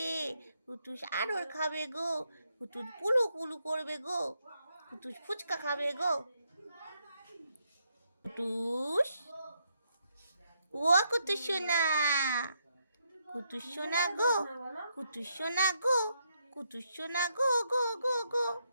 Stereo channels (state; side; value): inverted; both; correlation -0.77